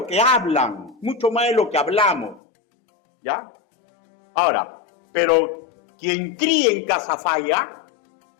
que hablan, mucho más de lo que hablamos, ¿ya? Ahora, pero quien críe en casa falla,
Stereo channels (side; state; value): right; drops out; at 2.4 s